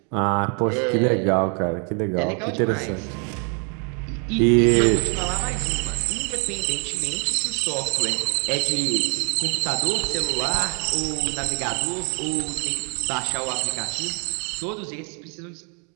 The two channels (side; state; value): left; quieter; 39.0 dB